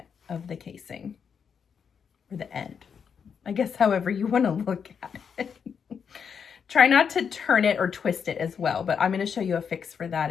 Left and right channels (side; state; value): right; quieter; 6.8 dB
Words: of the casing, or the end, I guess, however you want to look at it. Try not to turn it or twist it as well, but I'm going to show you a fix for that